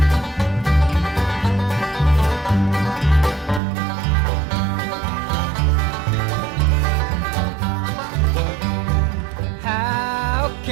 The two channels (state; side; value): drops out; left; at 3.6 s